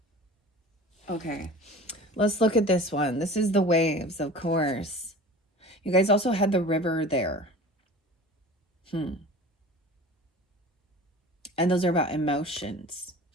Okay, let's look at this one. This is the waves, of course. You guys also had the river there. And those are about emotions.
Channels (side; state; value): both; normal; correlation 0.39